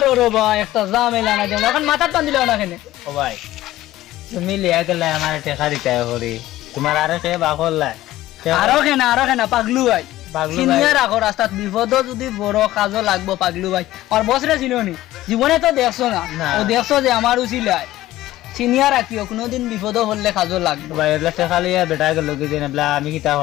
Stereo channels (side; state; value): right; quieter; 15.4 dB